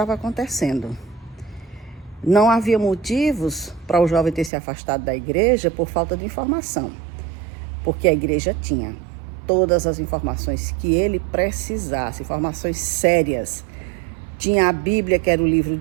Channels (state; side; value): drops out; left; at 4.5 s